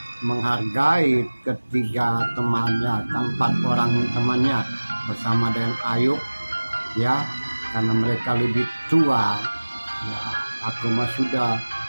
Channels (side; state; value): both; inverted; correlation -1.00